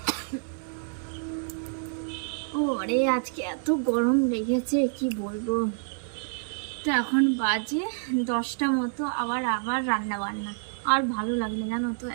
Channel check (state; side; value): silent; left; 59 dB below the other